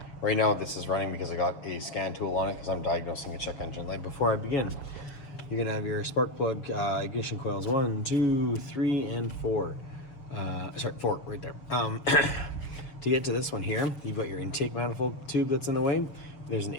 Right now, this is running because I got a scan tool on it because I'm diagnosing a check engine light. Before I begin, you're gonna have your spark plug ignition coils 1, 2, 3, and 4. Sorry, 4 right there. To get to this one here, you've got your intake manifold tube that's in the way. There's an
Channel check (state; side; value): late; right; 6.8 ms